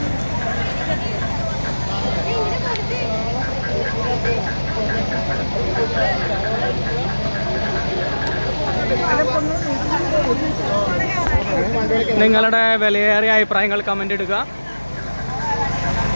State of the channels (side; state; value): both; inverted; correlation -1.00